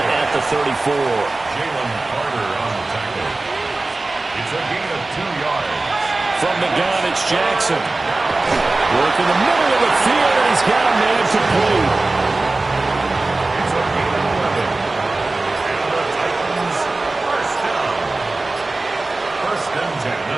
at the 34. Jalen Carter on the tackle. It's a gain of 2 yards. From the gun, it's Jackson. Work in the middle of the field, and he's got a man complete. It's a gain of 11. And the Titans first down. 1st and 10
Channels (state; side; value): quieter; left; 3.2 dB